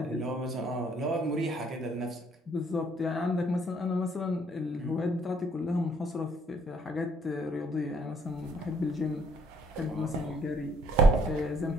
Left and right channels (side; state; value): both; normal; correlation 0.65